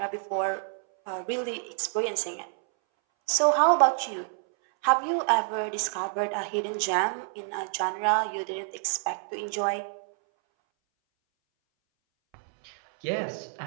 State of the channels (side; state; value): left; silent; 59 dB below the other